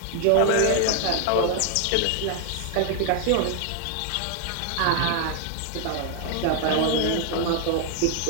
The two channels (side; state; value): both; different; correlation 0.00